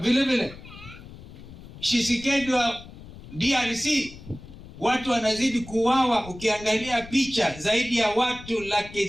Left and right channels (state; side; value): noise; left; rumble, 16 dB below the sound